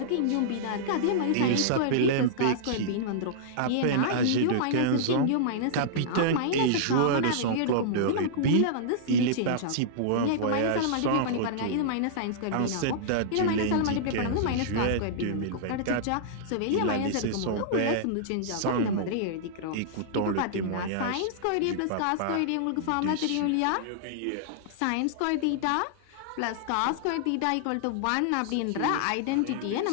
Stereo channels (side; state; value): both; different; correlation -0.02